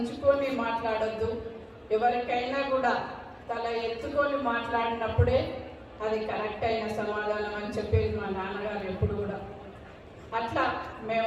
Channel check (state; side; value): identical; both; correlation 1.00